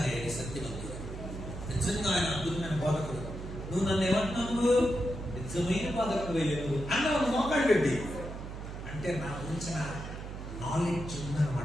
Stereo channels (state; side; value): noise; right; hum, 9 dB below the sound